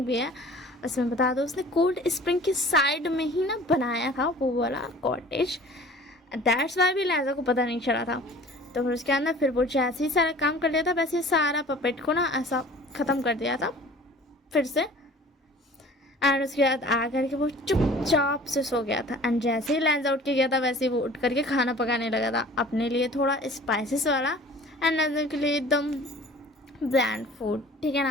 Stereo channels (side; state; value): both; normal; correlation 0.46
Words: भी है। उसमें बता दो उसने कोल्ड स्प्रिंग के साइड में ही ना बनाया था वो वाला कॉटेज, दैट्स वाई भी लैंजा को पता नहीं चला था। तो फिर उसके अंदर फिर वो जैसे ही सारा काम कर लिया था वैसे ही सारा पपेट को ना ऐसा ख़त्म कर दिया था फिर से। एंड उसके बाद आ करके वो चुपचाप से सो गया था। एंड जैसे ही लैंजा उठ के गया था वैसे ही वो उठ करके खाना पकाने लगा था अपने लिए थोड़ा स्पाइसेस वाला एंड लैंजा के लिए एकदम ब्लैंड फूड, ठीक है